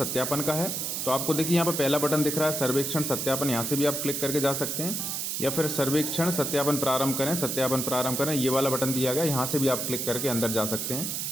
का है। तो आपको देखिए यहाँ पे पहला बटन दिख रहा है सर्वेक्षण सत्यापन, यहाँ से भी आप क्लिक करके जा सकते हैं, या फिर सर्वेक्षण सत्यापन प्रारंभ करें, सत्यापन प्रारंभ करें, ये वाला बटन दिया गया, यहाँ से भी आप क्लिक करके अंदर जा सकते हैं।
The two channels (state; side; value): noise; right; hiss, 2 dB below the sound